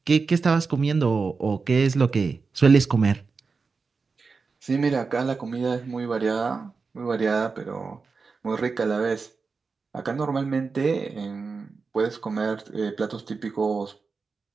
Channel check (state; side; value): quieter; left; 4.7 dB